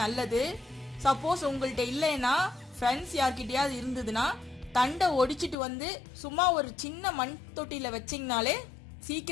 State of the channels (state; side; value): drops out; right; at 5.6 s